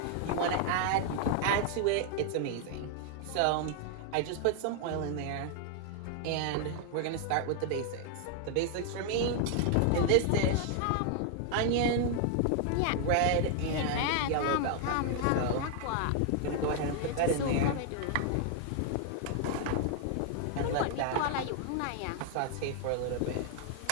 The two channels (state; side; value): different; both; correlation 0.00